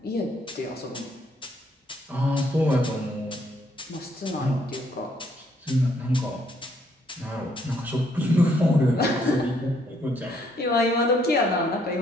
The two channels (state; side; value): normal; both; correlation 0.69